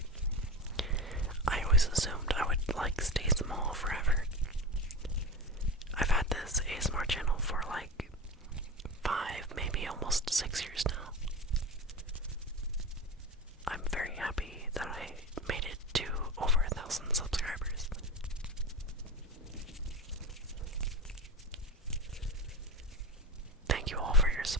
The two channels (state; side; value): normal; both; correlation 0.25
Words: I always assumed I would stay small forever. I've had this ASMR channel for 5, maybe almost 6 years now. I'm very happy that I made it to over 1,000 subscribers. Thank you all for your